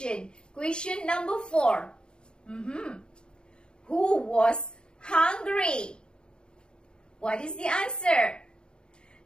question number 4. Who was hungry? What is the answer?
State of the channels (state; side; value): late; right; 0.050 ms